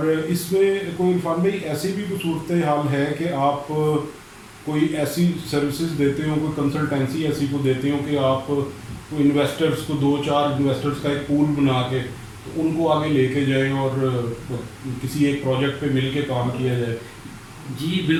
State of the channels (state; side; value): identical; both; correlation 1.00